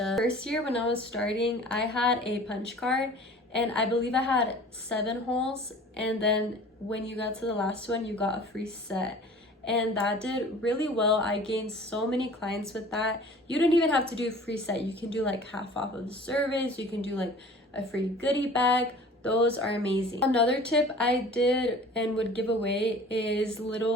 First year when I was starting, I had a punch card, and I believe I had 7 holes, and then when you got to the last one, you got a free set. And that did really well. I gained so many clients with that. You don't even have to do a free set. You can do like half off of the service. You can do like a free goodie bag. Those are amazing. Another tip I did and would give away is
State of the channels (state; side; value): normal; both; correlation 0.45